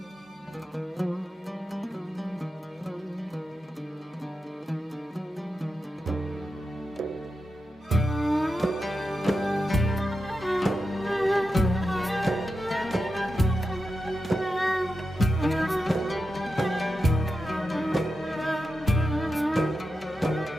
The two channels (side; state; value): both; normal; correlation 0.90